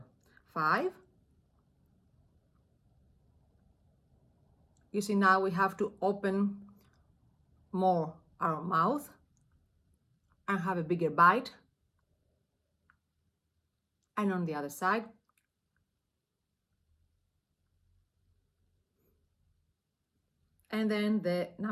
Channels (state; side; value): identical; both; correlation 1.00